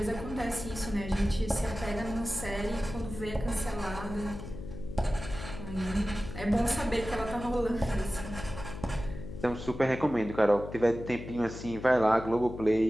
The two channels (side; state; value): left; noise; hum, 10 dB below the sound